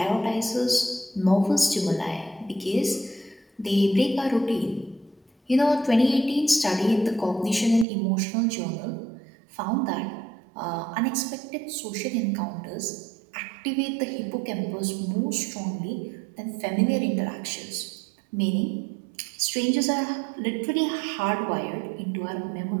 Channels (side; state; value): left; drops out; at 7.9 s